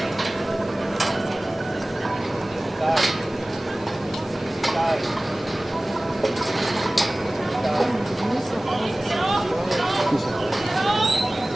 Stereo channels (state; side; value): normal; both; correlation 0.98